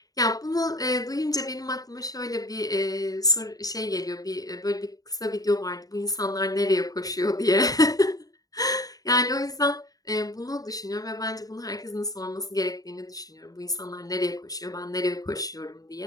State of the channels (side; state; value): right; late; 0.18 ms